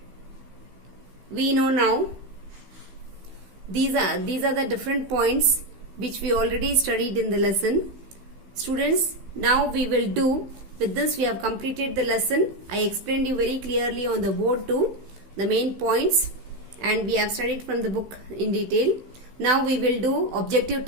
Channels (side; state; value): left; late; 15 ms